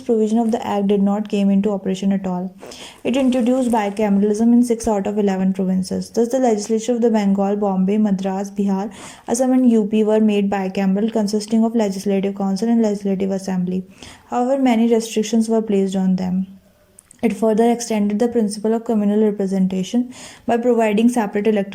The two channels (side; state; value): both; identical; correlation 1.00